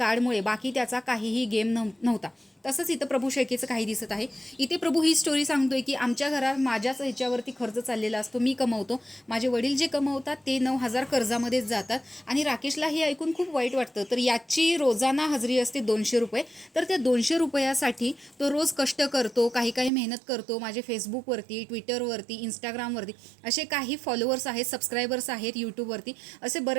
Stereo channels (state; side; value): drops out; left; at 19.9 s